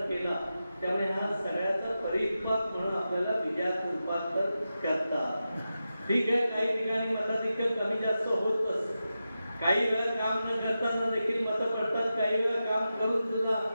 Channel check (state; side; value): inverted; both; correlation -0.91